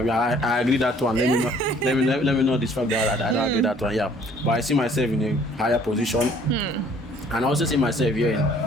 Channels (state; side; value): normal; both; correlation 0.58